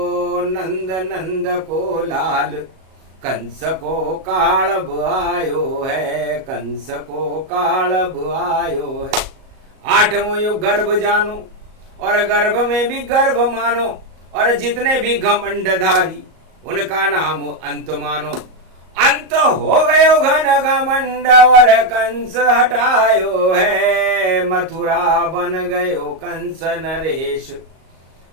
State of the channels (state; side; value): late; left; 38 ms